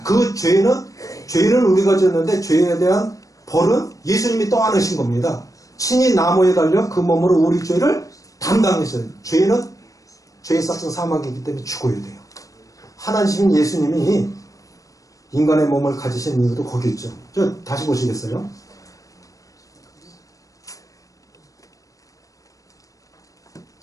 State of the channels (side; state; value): right; late; 0.16 ms